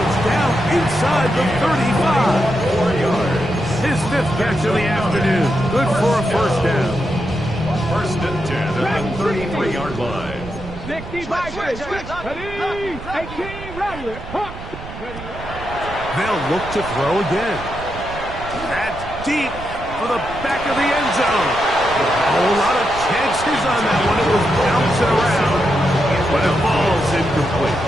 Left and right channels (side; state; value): right; noise; rumble, 12 dB below the sound